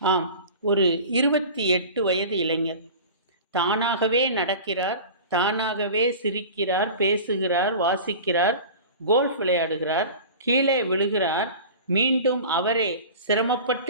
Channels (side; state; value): both; inverted; correlation -0.37